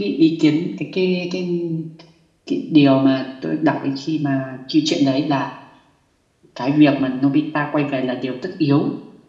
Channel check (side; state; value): both; identical; correlation 1.00